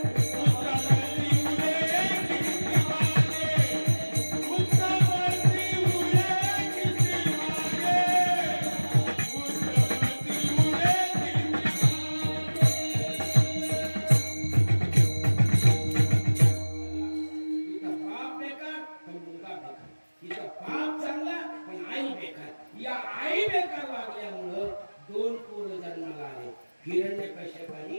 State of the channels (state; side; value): inverted; both; correlation -1.00